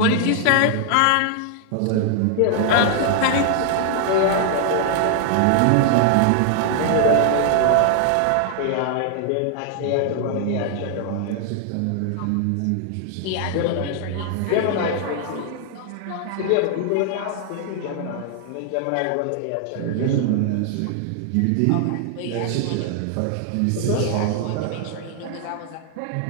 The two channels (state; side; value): different; both; correlation 0.00